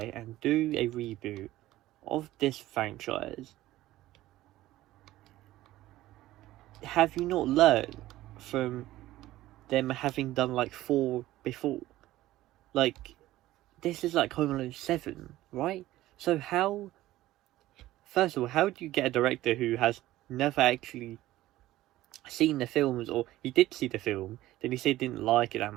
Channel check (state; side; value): quieter; left; 15.8 dB